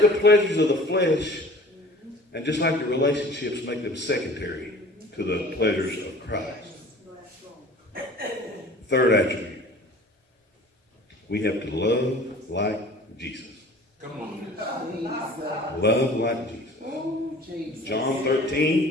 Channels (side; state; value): both; normal; correlation 0.45